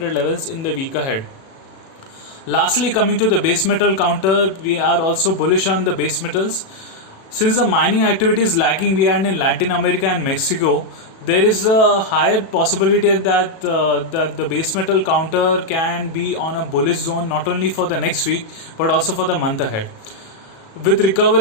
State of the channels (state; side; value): late; right; 37 ms